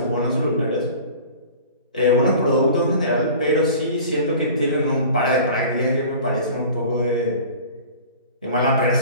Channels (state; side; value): inverted; both; correlation -0.42